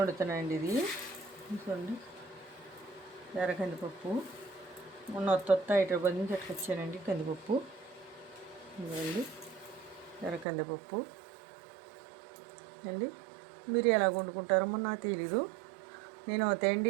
ఇది చూడండి ఎర్ర కందిపప్పు మొత్తం హైదరాబాద్ నుంచి ఎట్టుకొచ్చానండి. కందిపప్పు ఇదిగోండి ఎర్ర కందిపప్పు అండి. మీరు ఎలా వండుకుంటారో నాకు తెలీదు. నేను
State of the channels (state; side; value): drops out; left; at 10.5 s